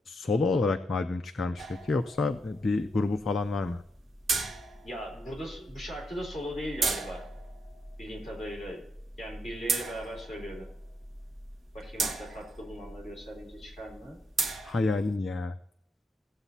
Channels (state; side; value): normal; both; correlation 0.79